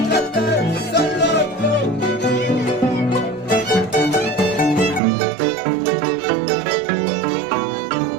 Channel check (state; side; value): drops out; left; at 5.0 s